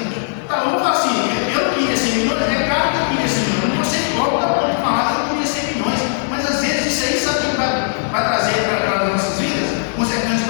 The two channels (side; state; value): right; silent; digital silence